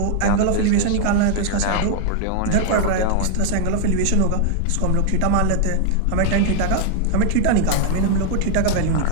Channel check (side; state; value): both; different; correlation 0.00